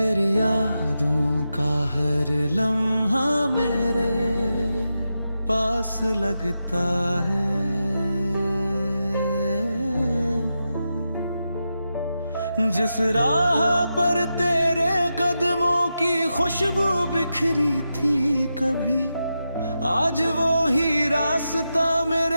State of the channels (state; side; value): inverted; both; correlation -0.88